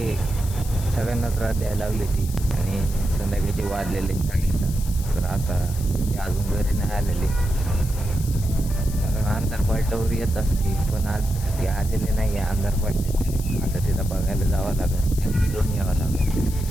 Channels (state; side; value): noise; left; hiss, 14 dB below the sound